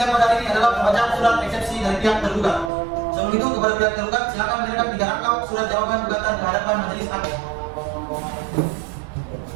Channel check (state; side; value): drops out; left; at 2.7 s